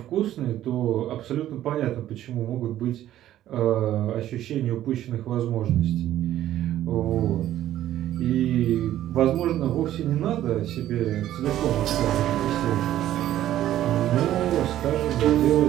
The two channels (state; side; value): quieter; left; 12.8 dB